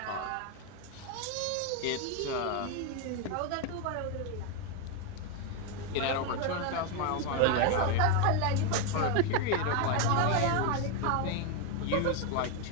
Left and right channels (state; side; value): different; both; correlation 0.01